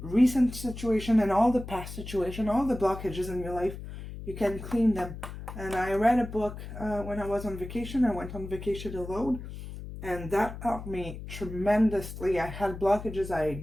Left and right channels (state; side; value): noise; left; hum, 10 dB below the sound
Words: recent situation and all the past situation, all the blockages in your life, you can clean them. And I read a book when I was on vacation. I went on vacation alone, and that helped me tremendously. I had blockages I